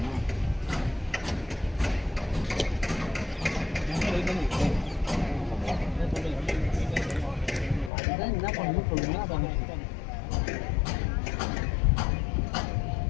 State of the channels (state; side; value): drops out; right; at 7.9 s